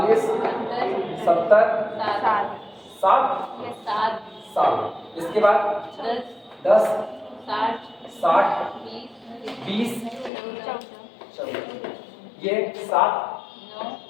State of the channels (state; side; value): drops out; right; at 10.3 s